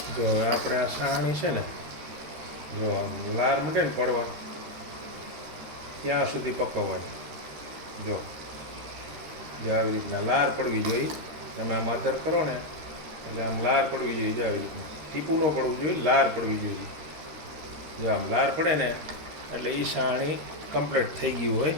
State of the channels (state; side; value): late; left; 13 ms